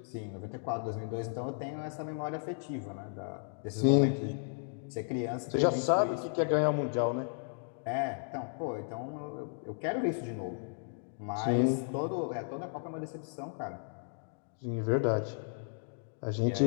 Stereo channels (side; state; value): right; silent; digital silence